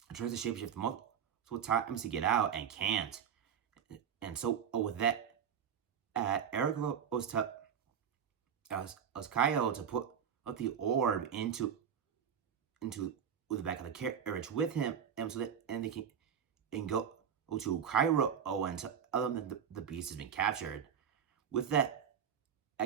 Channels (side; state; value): left; quieter; 8.0 dB